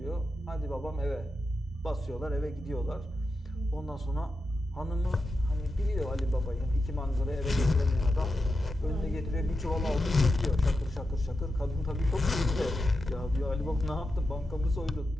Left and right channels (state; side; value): normal; both; correlation 0.89